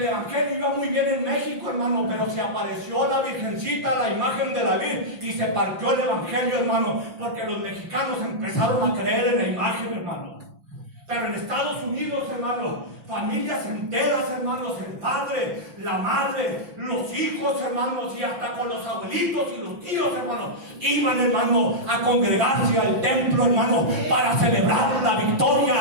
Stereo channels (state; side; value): late; left; 5.8 ms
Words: evangelio iba muy bien en México, hermano, pero se apareció la Virgencita, la imagen de la Virgen, y se partió el evangelio, hermano, porque los mexicanos empezaron a creer en la imagen, hermano. Pero en Estados Unidos, hermano, familias enteras, hermanos, el padre, la madre, los hijos, hermanos, y hasta con los abuelitos y los tíos, hermanos, iban, hermano, a congregarse al templo, hermano, para celebrar la